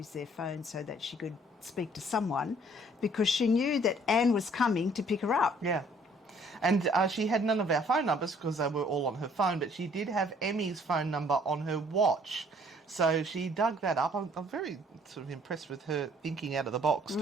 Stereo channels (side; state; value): both; normal; correlation 0.60